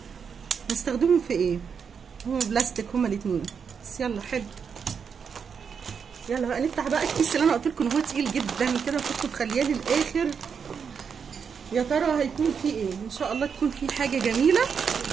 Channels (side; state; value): left; quieter; 6.5 dB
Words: نستخدمهم في ايه؟ هما بلاستيك هما الاتنين، بس يلا حلو. يلا بقى نفتح بقى الكيس اللي انا قلت لكم ان هو تقيل جدا كده، وكنت مخلياه للاخر. يا ترى هيكون فيه ايه؟ ان شاء الله تكون فيه حاجه جميله